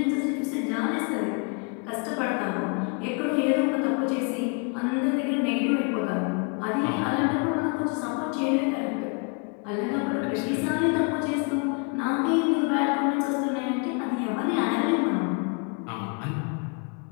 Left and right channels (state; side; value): quieter; right; 35.5 dB